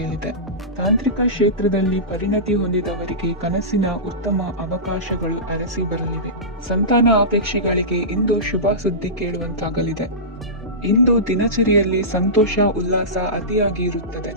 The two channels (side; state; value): both; normal; correlation -0.19